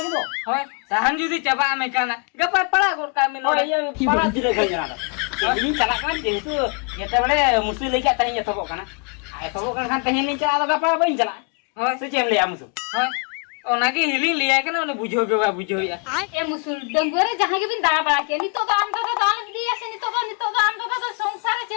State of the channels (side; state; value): right; quieter; 39.7 dB